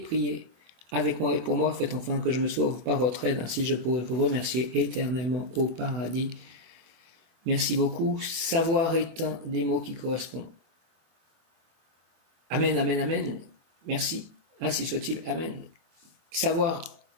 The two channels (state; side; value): late; left; 24 ms